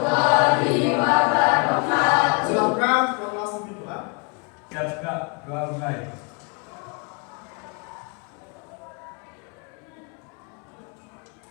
wabarakatuh. Silakan kelas doa. Siap Kak, doa mulai.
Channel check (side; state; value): right; quieter; 32.2 dB